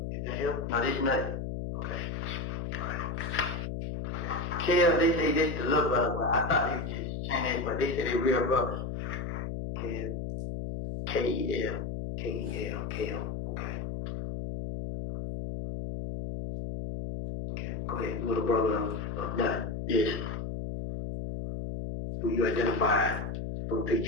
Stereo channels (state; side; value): noise; left; hum, 4 dB below the sound